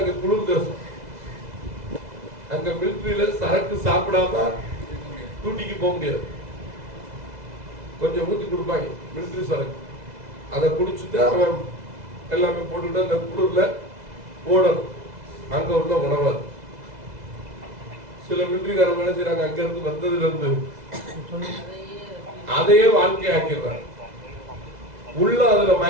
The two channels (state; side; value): late; left; 2.0 ms